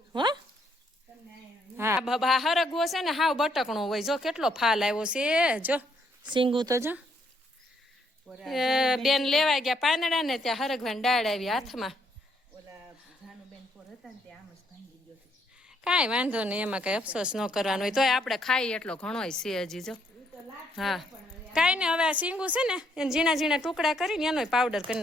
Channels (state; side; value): normal; both; correlation 0.71